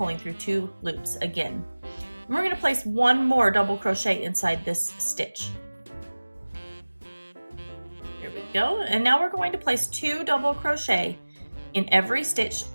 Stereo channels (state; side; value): inverted; both; correlation -1.00